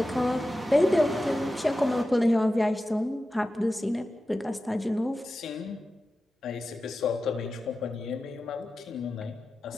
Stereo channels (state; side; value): normal; both; correlation 0.93